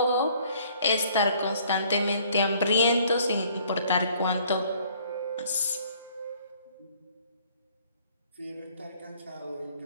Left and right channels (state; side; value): inverted; both; correlation -0.59